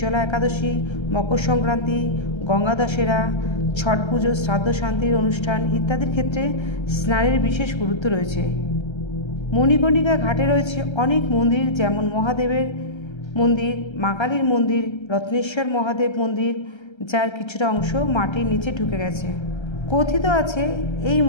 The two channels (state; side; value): late; right; 1.3 ms